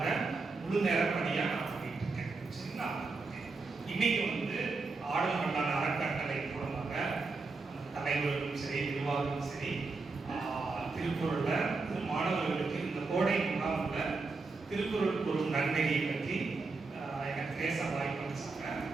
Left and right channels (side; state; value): left; quieter; 4.0 dB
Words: முழு நேர பணியாக நான் பண்ணிட்டு இருக்கேன் சரிங்களா. இன்னைக்கு ஆடும் மன்னார் அறக்கட்டளை மூலமாக தலைவர்களும் சரி நிர்வாகமும் சரி திருக்குறள்ல மாணவர்களுக்கு இந்த கோடை முகாம்ல திருக்குறள் கூறும் நன்மையை பற்றி எனக்கு பேச வாய்ப்பு அளிச்சாங்க.